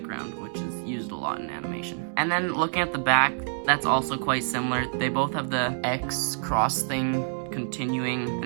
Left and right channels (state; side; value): silent; left; digital silence